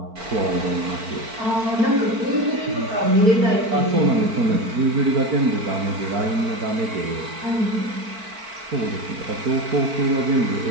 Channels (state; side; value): late; left; 4.5 ms